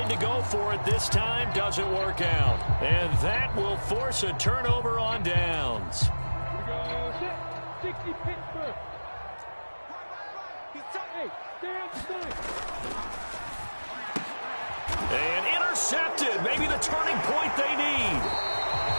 to go for it this time. Doesn't work out. And that will force a turnover on downs. Here we go. Set. 60 Pittsburgh. Hey, stay on the side. And intercepted. Maybe the turning point they need.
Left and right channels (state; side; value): inverted; both; correlation -1.00